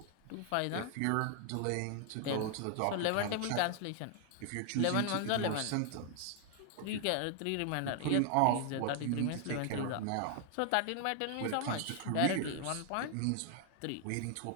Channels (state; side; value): different; both; correlation 0.00